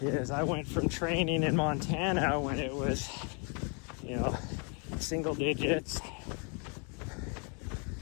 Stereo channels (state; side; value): quieter; right; 36.5 dB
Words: Is I went from training in Montana when it was, you know, single digits,